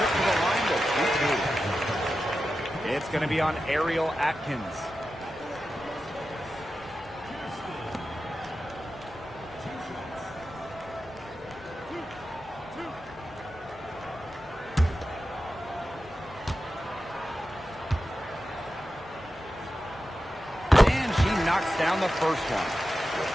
to the line to shoot. It's going to be on Ariel Atkins. Knocks down the first one.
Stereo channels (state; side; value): normal; both; correlation 0.92